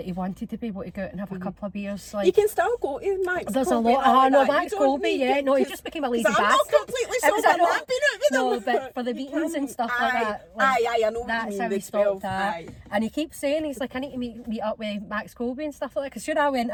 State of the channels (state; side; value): identical; both; correlation 1.00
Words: he wanted to be able to go out and have a couple of beers. Like, you can still go to Max There's Colby. a lot. Max Colby, no, he just became a lazy bastard. I'm not completely sober, I've been out with him. No, but for the meetings and stuff like that. I know what that's you mean. How he stopped that. And he keeps saying, he's like, I need to meet up with Max Colby and stuff like that. Because sure, I went